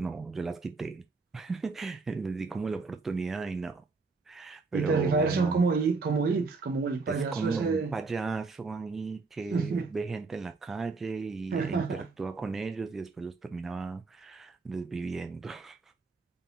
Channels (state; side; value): quieter; left; 4.1 dB